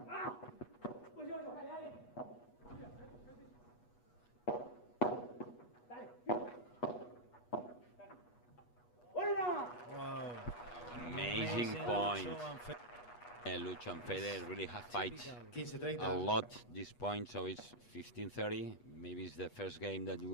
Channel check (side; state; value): right; late; 8.3 ms